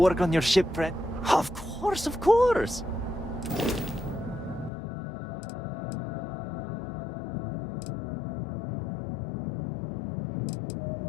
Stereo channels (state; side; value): drops out; right; at 4.7 s